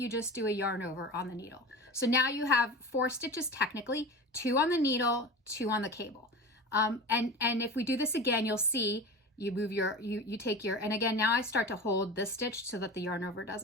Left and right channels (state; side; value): normal; both; correlation 0.32